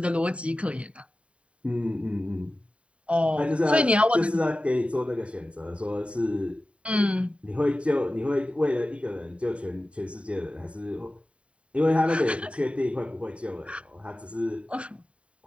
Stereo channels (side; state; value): left; late; 0.062 ms